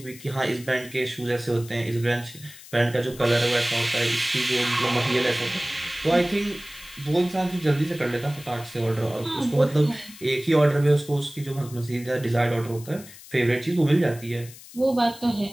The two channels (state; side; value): noise; left; hiss, 18 dB below the sound